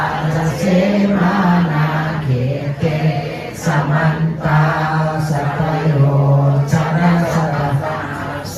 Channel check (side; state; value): both; identical; correlation 1.00